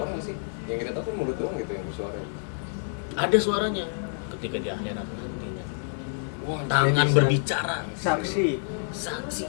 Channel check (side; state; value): right; silent; digital silence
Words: nggak sih? Yang kita tahu kan mulut doang gitu yang bersuara. Ada suaranya ketika di akhirat nantinya. Wah, Tangan bisa. berbicara, Saksi. saksi